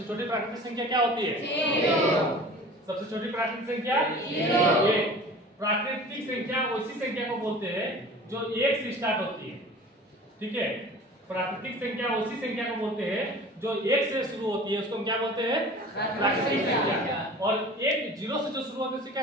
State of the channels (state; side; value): normal; both; correlation 0.41